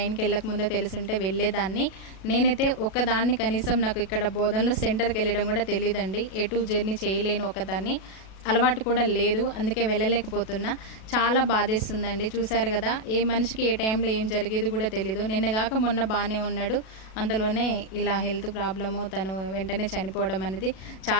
వెళ్ళక ముందే తెలుసుంటే వెళ్ళేదాన్ని. నేనైతే ఒక్కదాన్ని కనీసం నాకు ఇక్కడ బోధనలో సెంటర్కి వెళ్ళడం కూడా తెలియదండి. ఎటు జర్నీ చేయలేను ఒకదాన్ని, అలవాటు కూడా లేదు, అందుకే వెళ్ళలేకపోతున్నా. చాలా బాధేస్తుందండి. చూశారు కదా, ఏ మనిషికి ఏ టైంలో ఏం జరిగేది కూడా తెలీదు. నిన్నగాక మొన్న బాగానే ఉన్నాడు, అందులోనే ఇలా హెల్త్ ప్రాబ్లము, తను వెంటనే చనిపోవడం అనేది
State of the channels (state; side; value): late; right; 37 ms